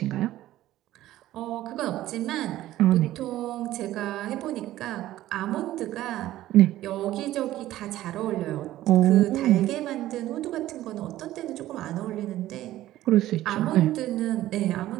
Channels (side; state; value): left; quieter; 14.6 dB